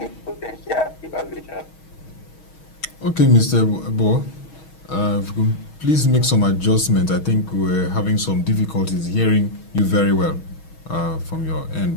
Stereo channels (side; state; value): right; late; 6.3 ms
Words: potential devaluation. Okay, Mr. Ebo, please make some adjustment. I think we're having some difficulties hearing you very well from your end,